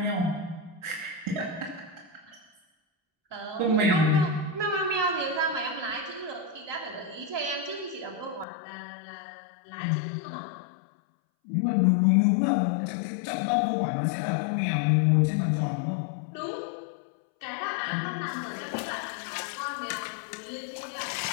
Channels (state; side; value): drops out; right; at 8.5 s